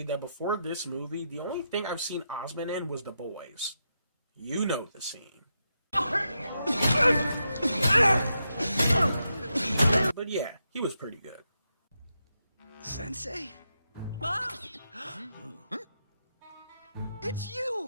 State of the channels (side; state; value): both; inverted; correlation -0.85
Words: that before this movie, the only thing I've seen Osment in was The Boys. You know the scene. But yeah, he was pretty good. Sensei? Mom? It's